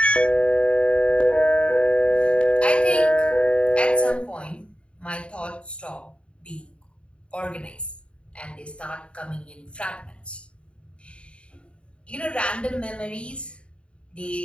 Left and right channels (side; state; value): right; late; 0.057 ms